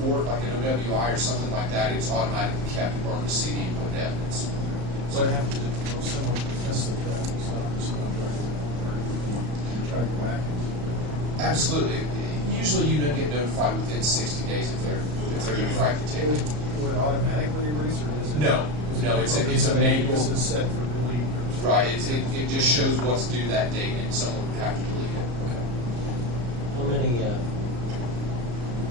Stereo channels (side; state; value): left; late; 34 ms